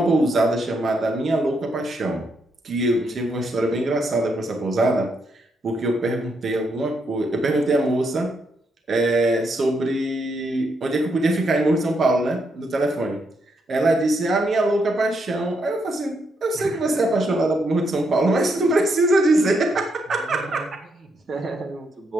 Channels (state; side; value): normal; both; correlation 0.78